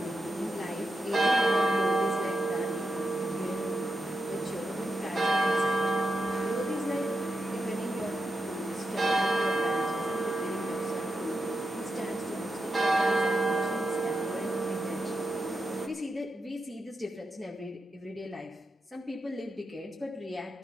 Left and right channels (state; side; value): normal; both; correlation 0.88